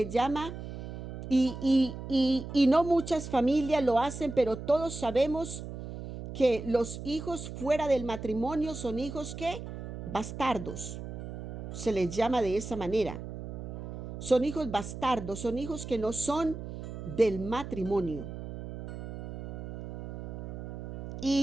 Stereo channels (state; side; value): noise; right; hum, 9 dB below the sound